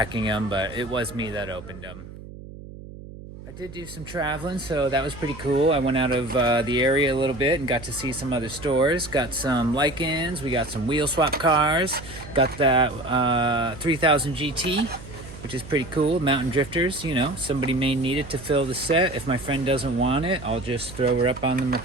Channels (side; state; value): right; noise; hum, 15 dB below the sound